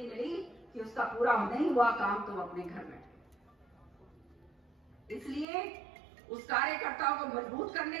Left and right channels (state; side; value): drops out; left; at 5.5 s